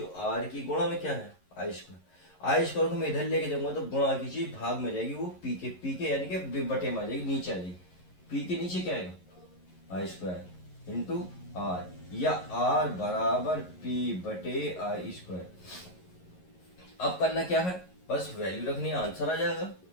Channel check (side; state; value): right; late; 11 ms